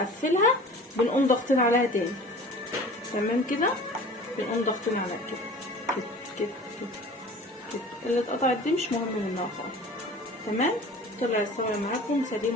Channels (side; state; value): both; normal; correlation 0.42